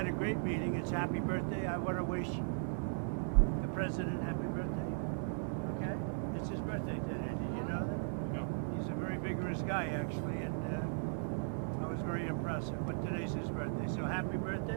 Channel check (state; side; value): silent; left; digital silence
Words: a great meeting. It's happy birthday. I want to wish the president happy birthday. Okay? It's his birthday today. Did you know that? No. He's a very vigorous guy, actually, and I was very impressive. But today's his birthday. So happy